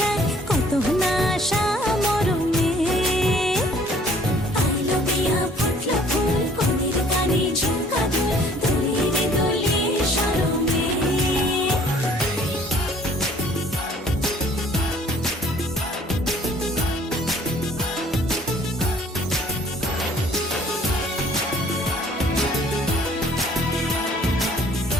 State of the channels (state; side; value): normal; both; correlation 0.56